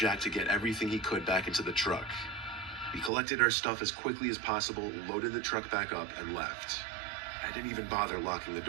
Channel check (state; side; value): drops out; left; at 3.1 s